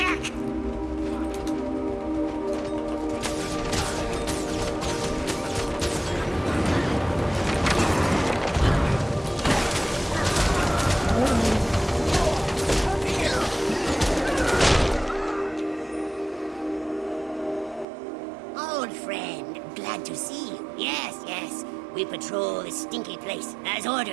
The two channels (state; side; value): drops out; left; at 17.9 s